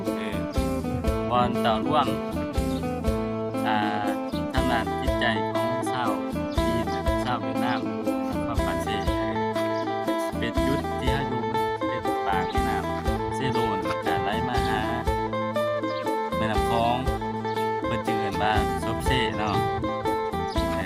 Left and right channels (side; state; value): both; identical; correlation 1.00